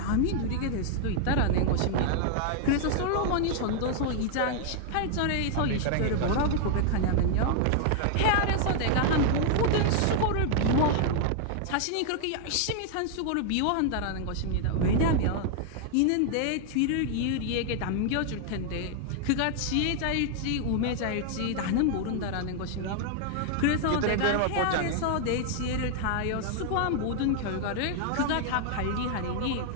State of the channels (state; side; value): different; both; correlation 0.00